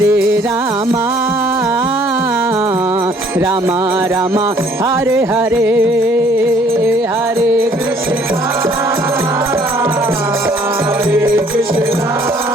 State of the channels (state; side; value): normal; both; correlation 0.60